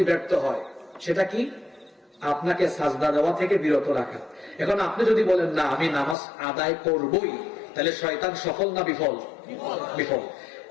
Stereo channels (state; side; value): drops out; right; at 6.2 s